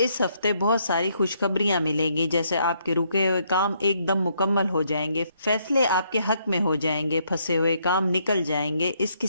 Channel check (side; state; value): both; inverted; correlation -0.72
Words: ہفتے بہت ساری خوشخبریاں ملیں گی، جیسے آپ کے رکے ہوئے کام ایک دم مکمل ہو جائیں گے، فیصلے آپ کے حق میں ہو جائیں گے، پھنسے ہوئے کام نکل جائیں گے۔ اس